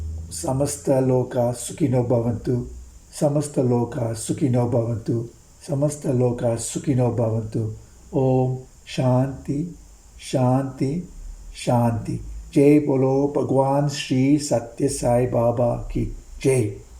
Samasta loka sukhino bhavantu. Samasta loka sukhino bhavantu. Samasta loka sukhino bhavantu. Om Shanti, Shanti, Shanti. Jai Bolo Bhagwan Shri Sathya Sai Baba ki Jai.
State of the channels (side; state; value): both; identical; correlation 1.00